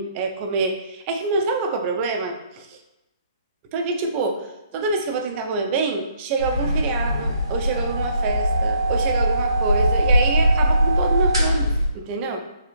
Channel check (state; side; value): inverted; both; correlation -0.68